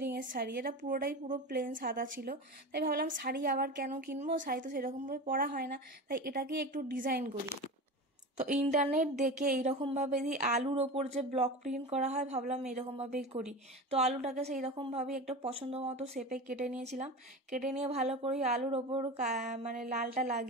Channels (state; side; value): normal; both; correlation 0.28